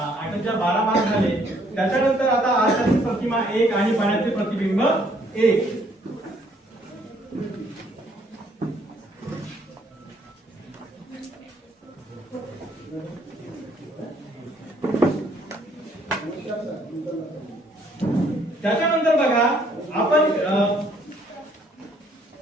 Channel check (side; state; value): both; normal; correlation 0.65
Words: 8 12 मार्क झाले. त्याच्यानंतर आता आरशातील प्रतिमा 1 आणि पाण्यातील प्रतिबिंब 1. त्याच्यानंतर बघा, आपण